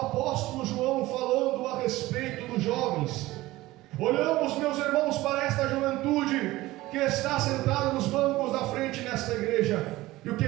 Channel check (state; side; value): quieter; left; 18.1 dB